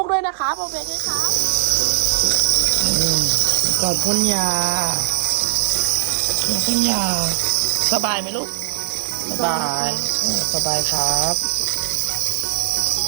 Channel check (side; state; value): left; silent; 62 dB below the other